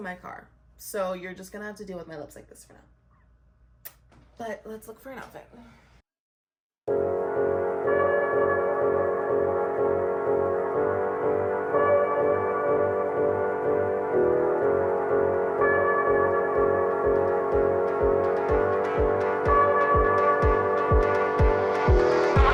my car. So you're just gonna have to deal with my lips like this for now. But let's look for an outfit.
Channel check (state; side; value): identical; both; correlation 1.00